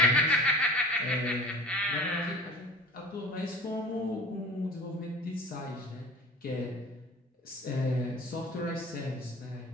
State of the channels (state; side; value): normal; both; correlation 0.41